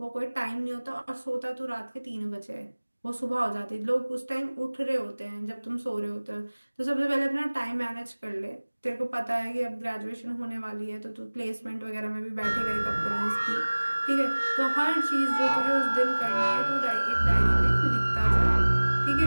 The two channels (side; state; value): both; inverted; correlation -1.00